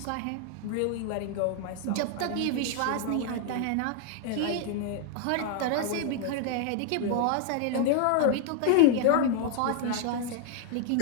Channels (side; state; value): both; different; correlation 0.00